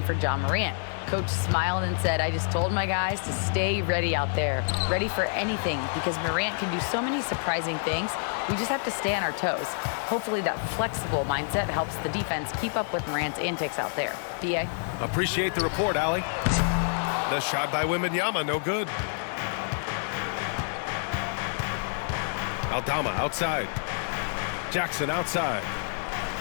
for Ja Morant. Coach smiled and said, I just told my guys to stay ready out there, ready for anything, because Morant can do so many surprising things. We just have to stay on our toes. Hopefully that flexible mindset helps the defense keep up with Morant's antics out there. D.A.? Appreciate the report, Allie. The shot by Wembanyama, no good. Aldama outside. Jackson outside.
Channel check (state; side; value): silent; right; digital silence